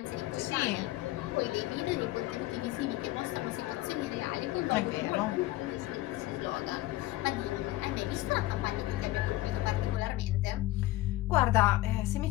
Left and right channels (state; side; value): quieter; right; 17.3 dB